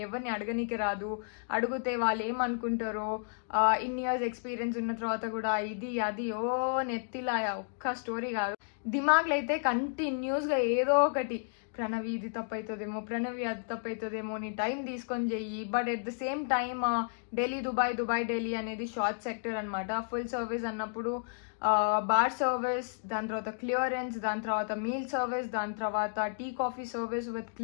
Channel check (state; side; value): silent; right; digital silence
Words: ఎవరిని అడగనీకి రాదు, అడిగితే వాళ్ళు ఏమనుకుంటారో. ఇన్ని ఇయర్స్ ఎక్స్పీరియన్స్ ఉన్న తర్వాత కూడా ఇది అది నెత్తిలా ఒక్క స్టోరీ కాదు. దిమాగ్లో అయితే కంటిన్యూస్గా ఏదో ఒకటి, ప్రణవి ఇది తప్పు అవుతుందేమో, ప్రణవి అది తప్పు అవుతుందేమో, నీ టైం తీసుకొని చెయ్యి. But at the same time Delhi Dubai, Dubai Delhi అనేది షార్ట్ సెక్టర్ అనమాట. ఫుల్ సర్వీస్ అన్నప్పుడు బార్ సర్వీస్, దాని తర్వాత క్లియరెన్స్, దాని తర్వాత మీల్ సర్వీస్, దాని తర్వాత tea coffee service with